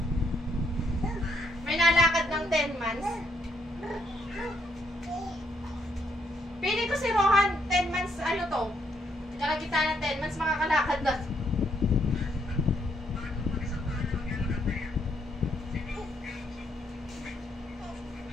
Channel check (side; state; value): both; normal; correlation 0.74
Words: May nalakad ng 10 months? Pili ko si Rohan, 10 months, ano to? Kalagitan ng 10 months, makakalakad na.